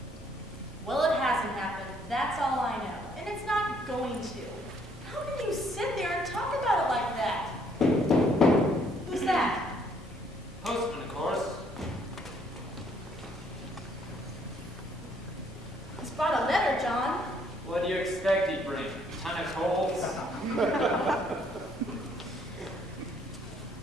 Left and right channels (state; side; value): normal; both; correlation 0.66